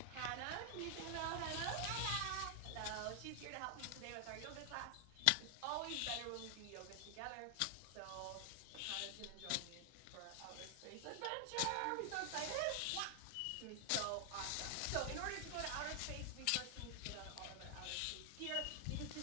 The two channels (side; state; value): both; different; correlation 0.00